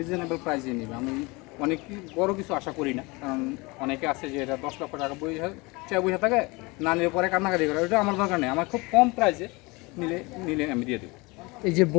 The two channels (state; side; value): quieter; right; 25.4 dB